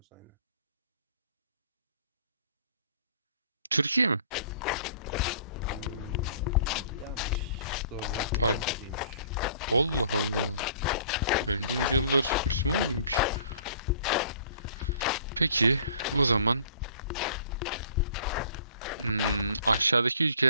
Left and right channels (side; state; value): both; inverted; correlation -0.52